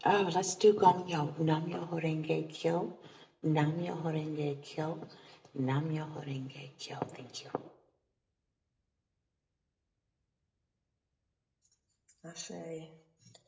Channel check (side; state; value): both; identical; correlation 1.00